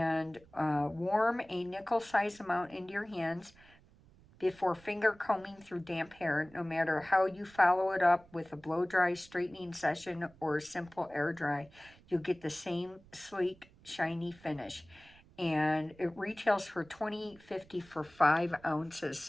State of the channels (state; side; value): noise; right; rumble, 26 dB below the sound